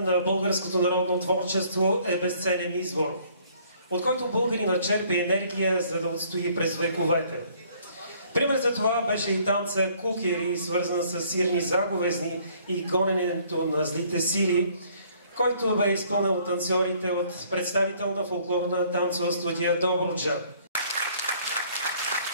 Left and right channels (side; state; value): both; inverted; correlation -0.61